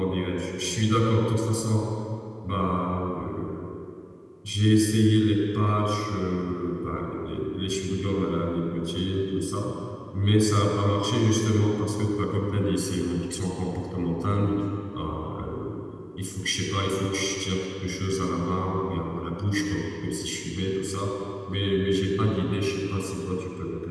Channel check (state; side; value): identical; both; correlation 1.00